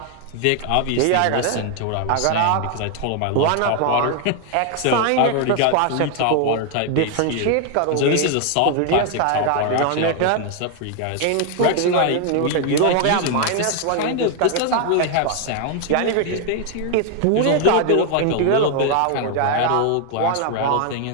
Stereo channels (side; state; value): both; different; correlation 0.00